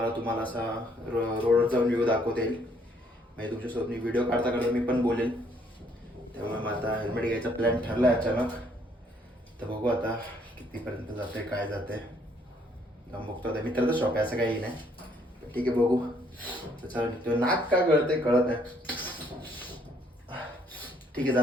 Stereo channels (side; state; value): both; normal; correlation 0.66